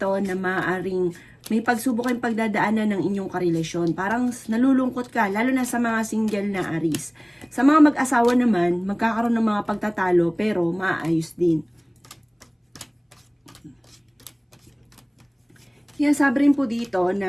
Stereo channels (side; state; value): both; identical; correlation 1.00